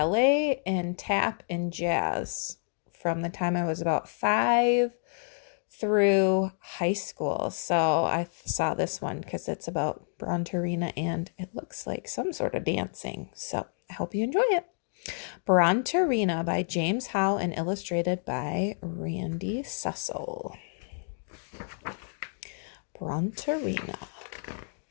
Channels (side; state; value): right; silent; digital silence